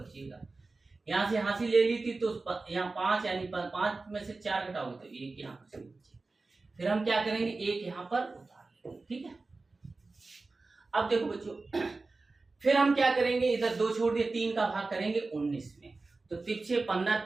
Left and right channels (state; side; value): quieter; left; 3.6 dB